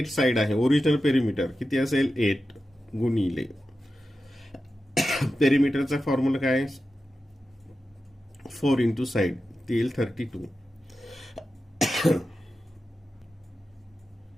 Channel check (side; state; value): both; normal; correlation 0.92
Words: साइड आहे. ओरिजिनल पेरिमीटर किती असेल, 8 गुणिले पेरिमीटरचा फॉर्म्युला काय, 4 × साइड, ती येईल 32.